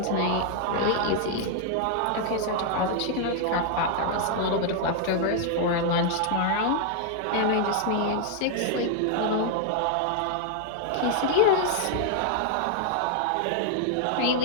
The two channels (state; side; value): different; both; correlation 0.00